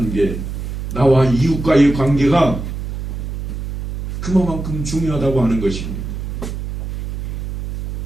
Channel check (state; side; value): noise; right; hum, 6 dB below the sound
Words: 나와 이웃과의 관계가 그만큼 중요하다고 하는 것입니다.